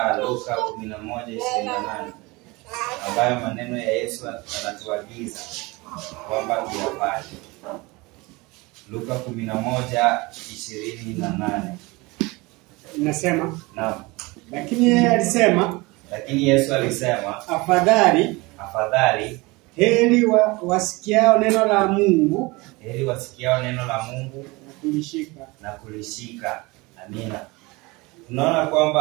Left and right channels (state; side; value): quieter; left; 23.9 dB